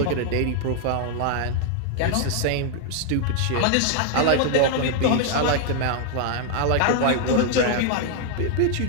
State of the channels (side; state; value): both; different; correlation 0.00